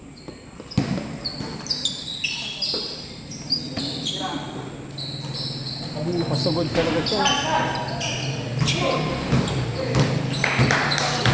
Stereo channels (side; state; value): both; identical; correlation 1.00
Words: Pasugod talaga siya.